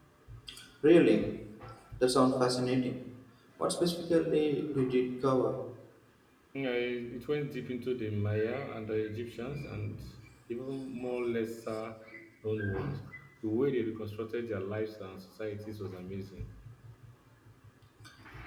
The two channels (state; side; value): identical; both; correlation 1.00